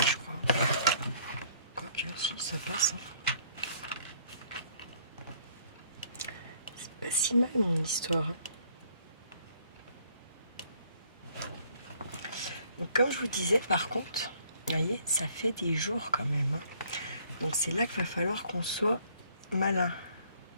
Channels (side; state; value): both; inverted; correlation -0.61